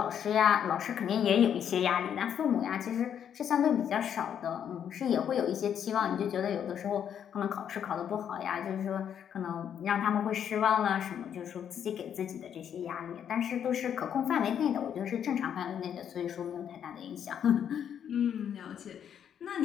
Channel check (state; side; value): quieter; right; 8.8 dB